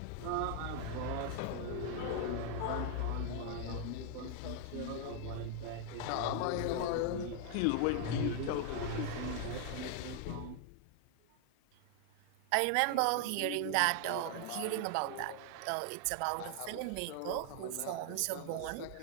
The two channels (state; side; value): different; both; correlation 0.00